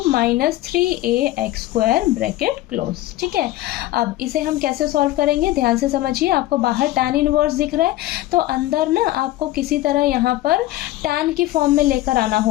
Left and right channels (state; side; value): quieter; right; 15.9 dB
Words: minus 3ax² bracket close. ठीक है, अब इसे हम कैसे सॉल्व करेंगे, ध्यान से समझिए। आपको बाहर tan इनवर्स दिख रहा है, तो अंदर ना आपको किसी तरह यहाँ पर tan की फॉर्म में लेकर आना